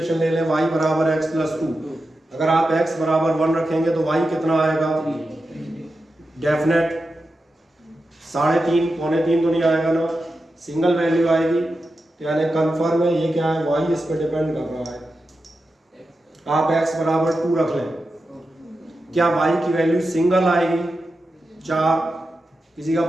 ले लें y बराबर x+2, अगर आप x बराबर 1 रखेंगे तो y कितना आएगा, डेफिनेट। 3.5 पौने 3 तो नहीं आएगा ना, सिंगल वैल्यू आएगी, तो यानी कंफर्म है ये क्या है, y इस पर डिपेंड कर रहा है। आप x बराबर 2 रख लें, क्या y की वैल्यू सिंगल आएगी 4, किसी का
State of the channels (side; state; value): both; normal; correlation 0.90